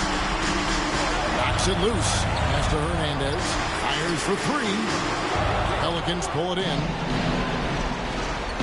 Knocks it loose. Pass to Hernandez. Fires for 3. Pelicans pull it in.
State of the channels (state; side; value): identical; both; correlation 1.00